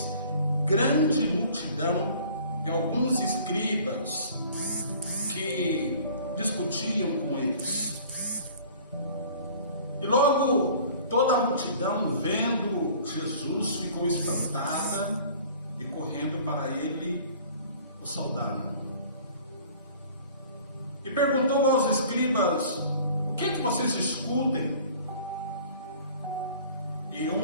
grande multidão e alguns escribas que discutiam com eles. E logo toda a multidão, vendo Jesus, ficou espantada e correndo para ele o saudaram. E perguntou aos escribas: o que é que vocês discutem? E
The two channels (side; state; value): both; inverted; correlation -0.49